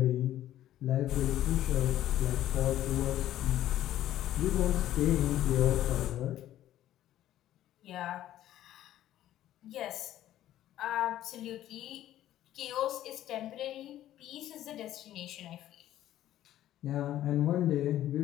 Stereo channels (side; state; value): right; quieter; 13.0 dB